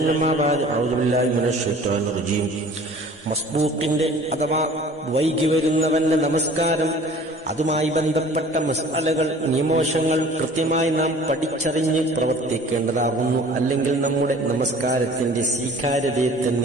أما بعد أعوذ بالله من الشيطان الرجيم മസ്ബൂക്കിന്റെ അഥവാ വൈകി വരുന്നവന്റെ നമസ്കാരം അതുമായി ബന്ധപ്പെട്ട മസ്അലകൾ നിയമവശങ്ങൾ കൃത്യമായി നാം പഠിച്ചറിഞ്ഞ് പ്രവർത്തിക്കേണ്ടതാകുന്നു. അല്ലെങ്കിൽ നമ്മുടെ നമസ്കാരത്തിന്റെ സ്വീകാര്യതയെ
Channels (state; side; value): normal; both; correlation 0.48